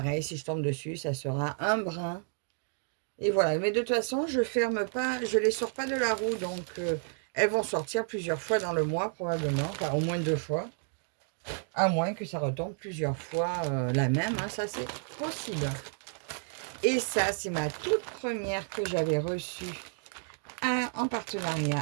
si je tombe dessus, ça sera un brin. Et voilà, mais de toute façon, je ferme pas, je les sors pas de la roue, donc elles vont sortir plusieurs fois dans le mois, probablement, enfin au moins 2 fois. À moins que ça retombe plusieurs fois la même, hein, ça c'est possible. Et ça, c'est ma toute première que j'avais reçue en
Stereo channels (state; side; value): silent; left; 57 dB below the other